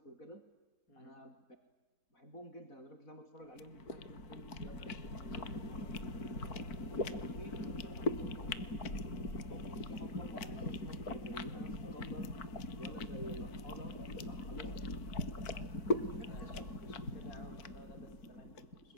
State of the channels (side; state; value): right; late; 4.5 ms